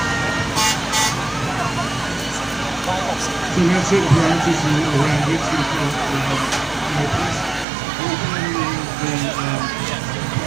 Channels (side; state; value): left; drops out; at 7.7 s